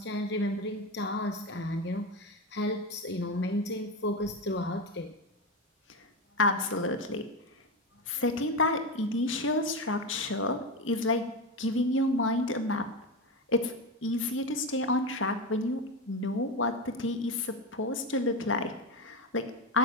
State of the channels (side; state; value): both; normal; correlation 0.17